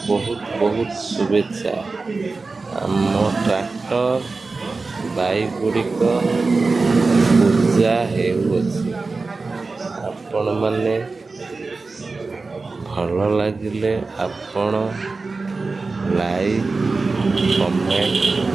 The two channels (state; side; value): quieter; left; 3.9 dB